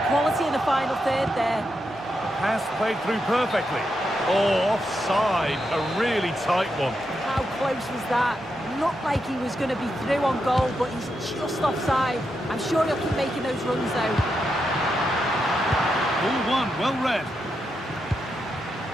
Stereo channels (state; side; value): normal; both; correlation 0.84